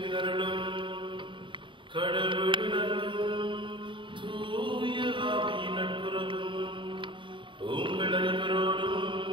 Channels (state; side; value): late; left; 0.24 ms